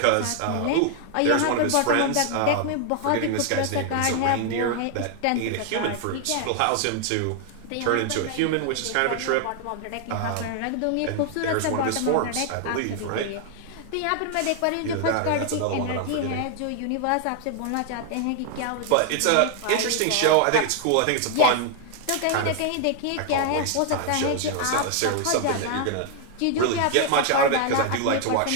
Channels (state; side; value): different; both; correlation 0.00